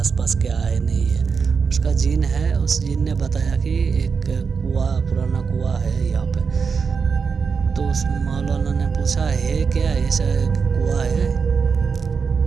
क्या है नहीं है। उसका जीन है, उस जीन ने बताया कि एक पुराना कुआं है यहाँ पे। तो उस मौलाना ने पूछा है क्या ऐसा कुआं है?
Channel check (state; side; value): quieter; left; 5.6 dB